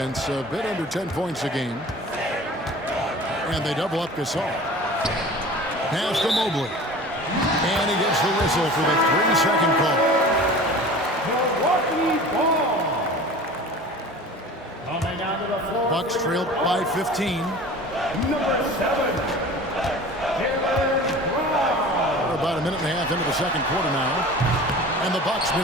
a bit under 10 points a game. And they double up Gasol. Pass to Mobley. And he gets the whistle for the 3-second call. Milwaukee ball. Coming out of Bucks trail by 15. Number 7. We're about a minute and a half into the second quarter now. And the Bucks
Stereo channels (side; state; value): both; normal; correlation 0.40